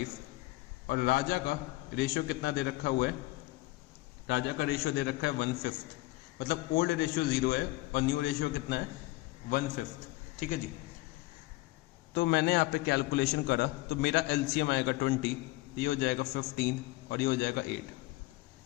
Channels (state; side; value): quieter; right; 20.1 dB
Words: और राजा का रेशियो कितना दे रखा हुआ है, राजा का रेशियो दे रखा है 1/5, मतलब ओल्ड रेशियो 0 है और न्यू रेशियो कितना है 1/5। ठीक है जी, तो मैंने यहाँ पे कैलकुलेशन करा तो मेरा एलसीएम आएगा 20, ये हो जाएगा 15 और ये हो जाएगा 8।